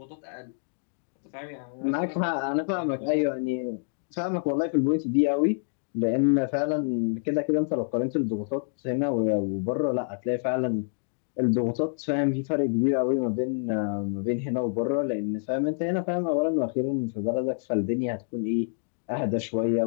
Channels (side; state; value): right; silent; digital silence